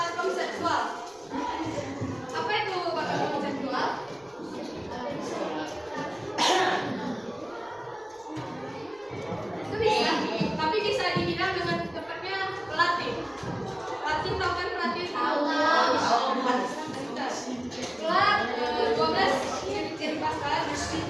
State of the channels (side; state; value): right; noise; rumble, 29 dB below the sound